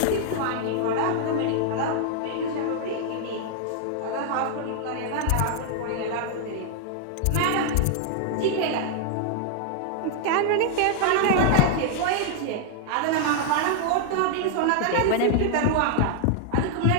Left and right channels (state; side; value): different; both; correlation -0.01